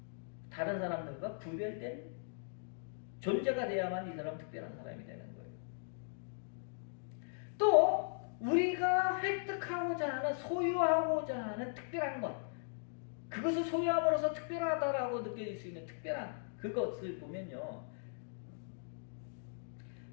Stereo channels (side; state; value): right; silent; digital silence